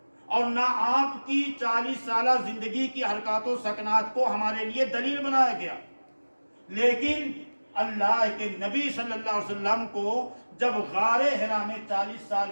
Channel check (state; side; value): inverted; both; correlation -1.00